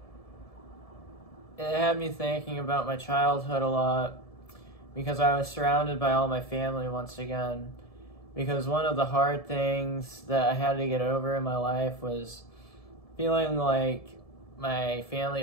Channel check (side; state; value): right; late; 1.7 ms